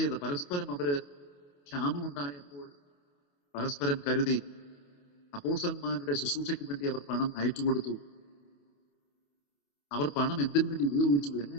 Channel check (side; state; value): right; late; 28 ms